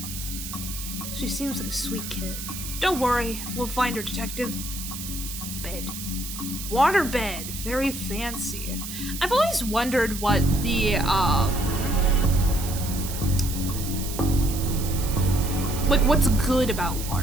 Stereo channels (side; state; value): right; noise; hiss, 8 dB below the sound